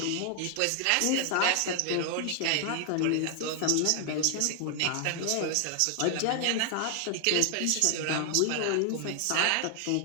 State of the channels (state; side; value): different; both; correlation 0.00